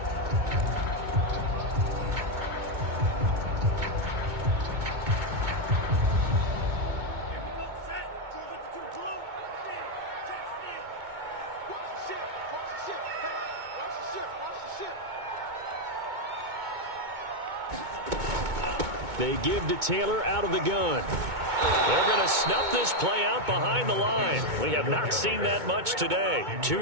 They give to Taylor out of the gun. They're going to snuff this play out behind the line. We have not seen that much today. 2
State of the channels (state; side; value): late; left; 2.2 ms